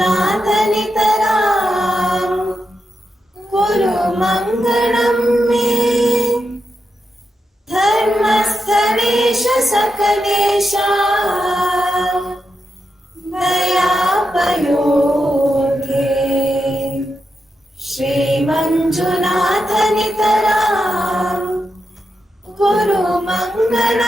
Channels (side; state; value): both; normal; correlation 0.87